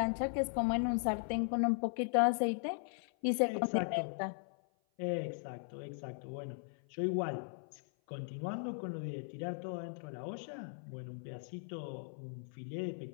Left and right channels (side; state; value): right; silent; 52 dB below the other